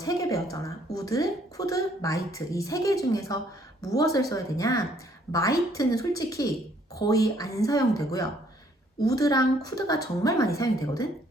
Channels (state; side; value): normal; both; correlation 0.64